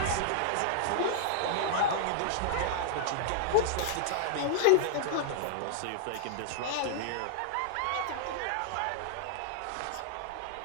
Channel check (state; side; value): different; both; correlation -0.01